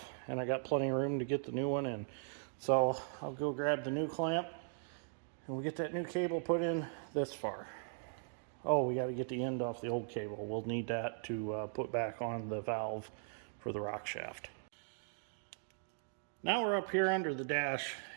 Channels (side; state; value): left; silent; digital silence